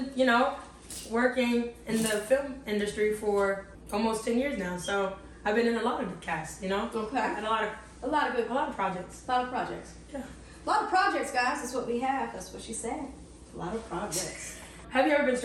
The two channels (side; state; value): both; identical; correlation 1.00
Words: working in the film industry for almost 10 years now, so I've been in a lot of the casts, Okay. And a lot of projects. A lot of projects. Yeah. A lot of projects, guys. That's what we have. That's what she said. A lot of projects. Have you ever been